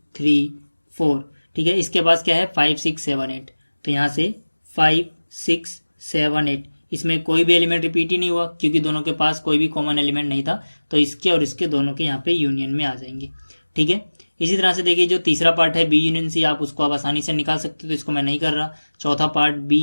3 4। ठीक है, इसके पास क्या है 5 6 7 8, तो यहाँ से 5 6 7 8, इसमें कोई भी एलिमेंट रिपीट ही नहीं हुआ क्योंकि दोनों के पास कोई भी कॉमन एलिमेंट नहीं था, तो इसके और इसके दोनों के यहाँ पे यूनियन में आ जाएंगे। ठीक है, इसी तरह से देखिए जो तीसरा पार्ट है बी यूनियन सी, आप उसको आप आसानी से निकाल सकते हो, तो इसको मैं नहीं कर रहा। चौथा पार्ट बी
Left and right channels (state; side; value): inverted; both; correlation -1.00